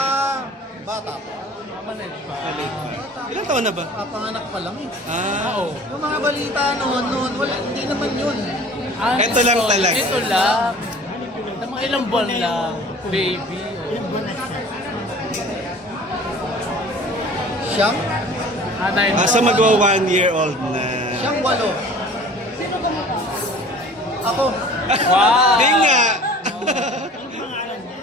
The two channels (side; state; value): both; normal; correlation 0.46